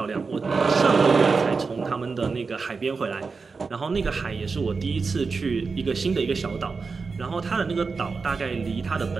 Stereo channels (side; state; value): left; quieter; 4.7 dB